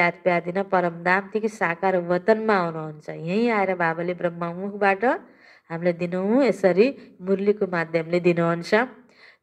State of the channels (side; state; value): both; identical; correlation 1.00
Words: प्यार दिन परमधामदेखि साकार वतनमा आउनुहुन्छ। यहीँ आएर बाबाले ब्रह्ममुखबाट हामीलाई दिनहुँ यसरी मुरलीको माध्यमले दिनुहुन्छ।